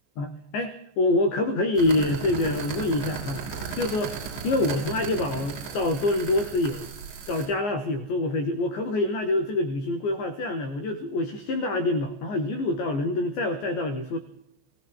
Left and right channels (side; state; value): right; late; 14 ms